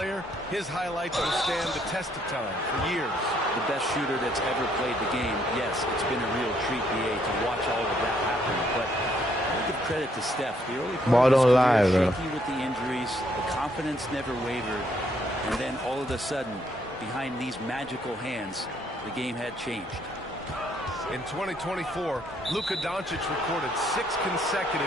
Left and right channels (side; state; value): both; normal; correlation 0.70